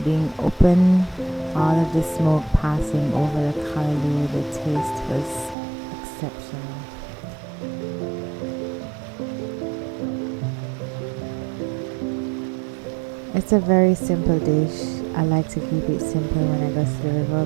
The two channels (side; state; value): left; drops out; at 5.6 s